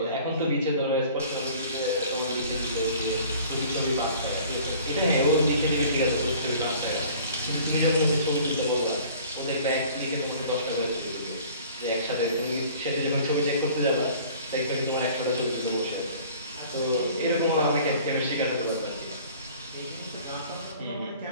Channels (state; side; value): inverted; both; correlation -0.49